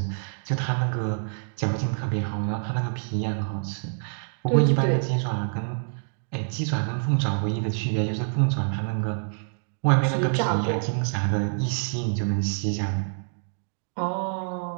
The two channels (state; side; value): silent; left; 61 dB below the other